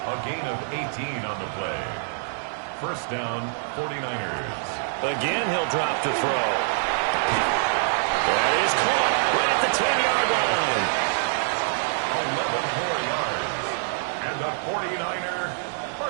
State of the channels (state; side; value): silent; left; digital silence